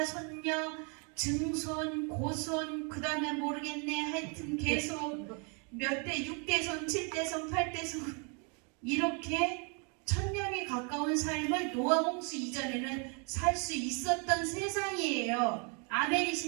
손녀, 증손, 고손, 그 다음에 모르겠네, 하여튼 계속 몇 대, 6대손, 7대손, 8대손 이렇게 1000년이 가까운 삶을 노아 홍수 이전에는 살 수 있었던 세상이에요.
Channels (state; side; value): quieter; left; 36.1 dB